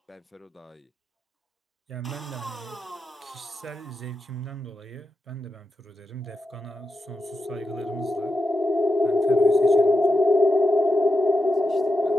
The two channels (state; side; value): normal; both; correlation 0.87